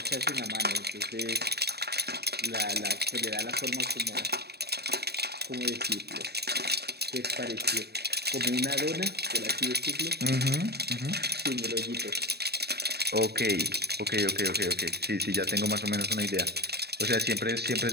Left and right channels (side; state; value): left; late; 0.47 ms